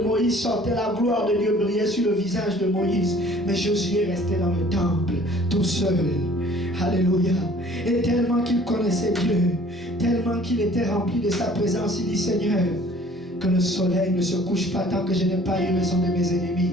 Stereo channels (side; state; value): both; normal; correlation 0.53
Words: Moïse sortait, la gloire de Dieu brillait sur le visage de Moïse. Mais Josué restait dans le temple, tout seul. Alléluia. Et tellement qu'il connaissait Dieu, tellement qu'il était rempli de sa présence, il dit, Seigneur, que le soleil ne se couche pas tant que je n'ai pas eu raison de mes